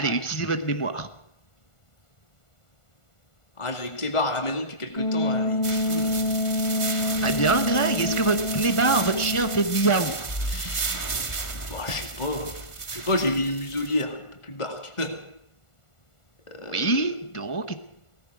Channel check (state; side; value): late; right; 1.4 ms